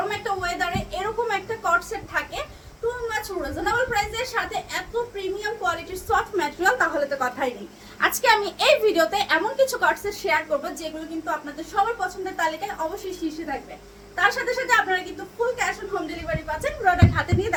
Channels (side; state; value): both; identical; correlation 1.00